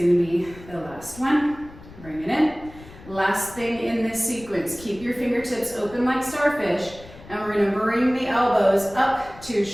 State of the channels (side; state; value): left; noise; rumble, 19 dB below the sound